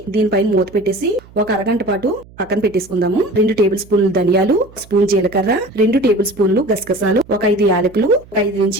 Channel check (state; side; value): noise; right; hum, 24 dB below the sound